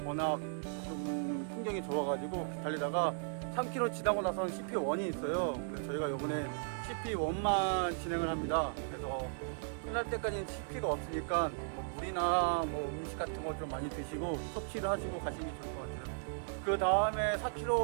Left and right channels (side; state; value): left; silent; digital silence